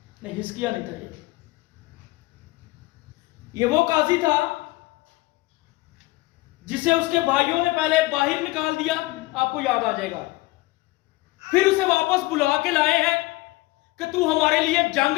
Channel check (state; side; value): quieter; right; 20.9 dB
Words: नहीं, हिजकिय्याह नहीं था। ये वो काजी था जिसे उसके भाइयों ने पहले बाहर निकाल दिया, आपको याद आ जाएगा। फिर उसे वापस बुला के लाए हैं कि तू हमारे लिए जंग